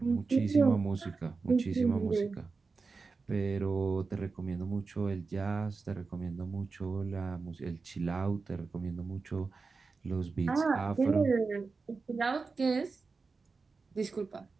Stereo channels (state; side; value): quieter; left; 4.4 dB